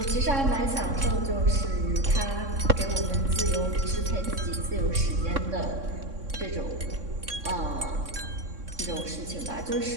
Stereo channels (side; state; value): left; late; 3.6 ms